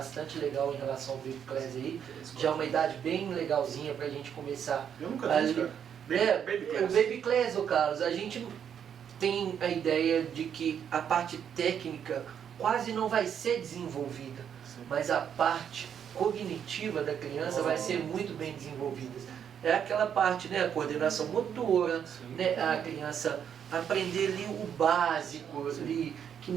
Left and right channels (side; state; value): left; quieter; 8.4 dB